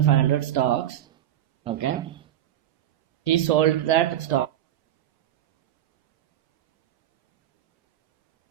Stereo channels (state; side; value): quieter; left; 11.8 dB